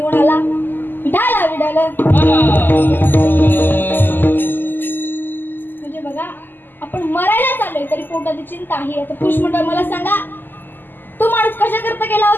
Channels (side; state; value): right; late; 0.091 ms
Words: आला? विठाला विठाला. म्हणजे बघा, आपण मरायला चाललोय तरी पोटाची चिंता आहे. आता पुरुष मंडळ मला सांगा, तो माणूस कशा करता गेला